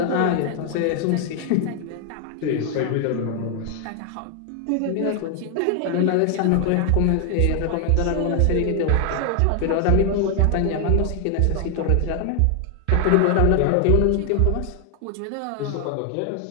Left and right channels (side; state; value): both; different; correlation 0.00